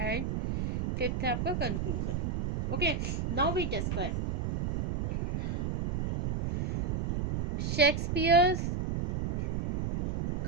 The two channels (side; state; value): right; noise; rumble, 2 dB below the sound